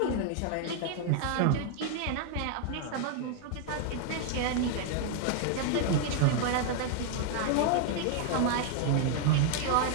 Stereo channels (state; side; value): different; both; correlation 0.00